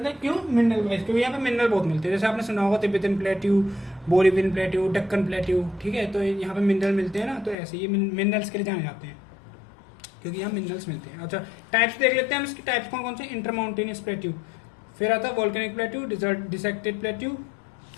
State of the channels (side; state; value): right; drops out; at 7.6 s